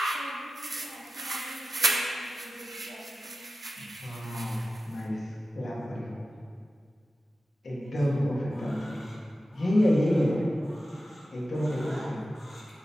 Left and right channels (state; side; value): normal; both; correlation 0.94